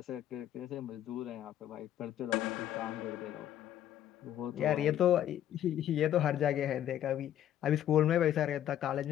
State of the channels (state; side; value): quieter; right; 11.4 dB